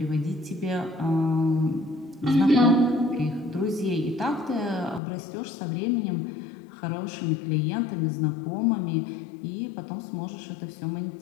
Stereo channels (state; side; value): drops out; right; at 5.0 s